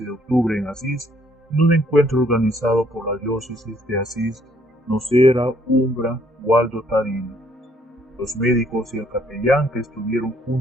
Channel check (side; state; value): both; normal; correlation 0.66